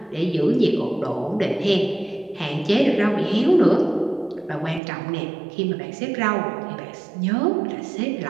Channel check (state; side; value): drops out; left; at 4.8 s